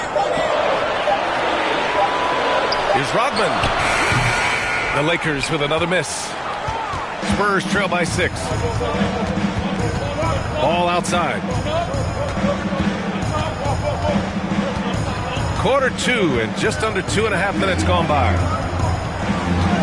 Here's Rodman. The Lakers with another miss. Spurs trail by 6. Ball outside. Quarter 2 and just under 2.5 minutes gone by.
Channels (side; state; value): both; identical; correlation 1.00